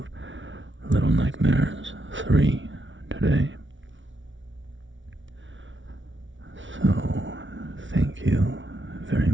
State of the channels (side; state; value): left; late; 0.56 ms